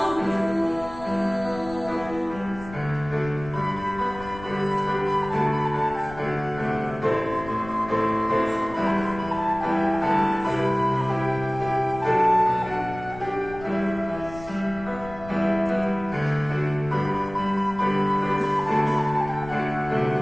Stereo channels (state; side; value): noise; left; rumble, 16 dB below the sound